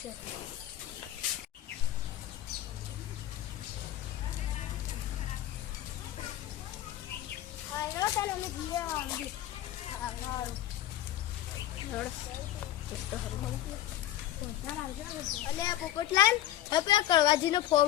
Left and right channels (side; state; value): right; quieter; 13.4 dB